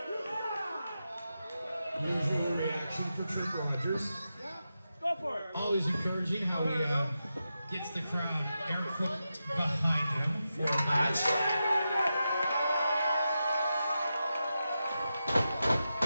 Usual reaction for Trip Rogers. Go for it. Always encouraging how he gets the crowd air quote behind him for a match.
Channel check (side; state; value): both; inverted; correlation -0.89